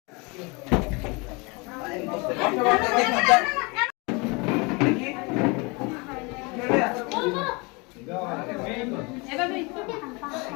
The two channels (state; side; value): quieter; right; 28.2 dB